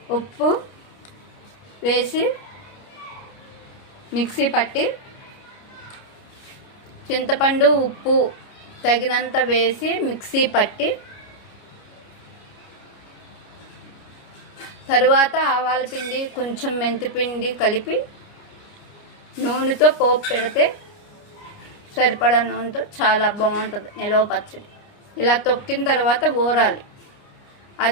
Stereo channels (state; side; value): late; right; 29 ms